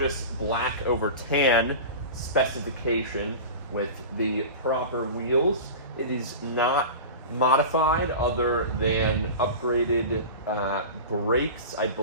black over tan specification with the proper wheels. It is not modified other than upgraded brakes, I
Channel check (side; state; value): both; inverted; correlation -0.31